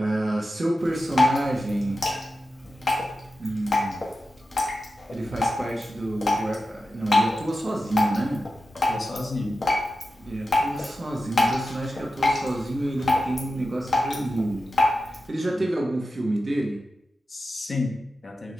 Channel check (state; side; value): normal; both; correlation 0.91